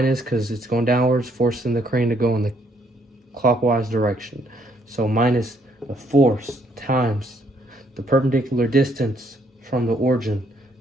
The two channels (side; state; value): both; normal; correlation 0.69